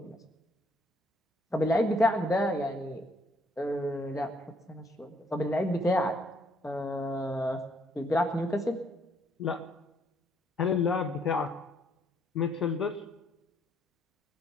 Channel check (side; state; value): both; normal; correlation 0.68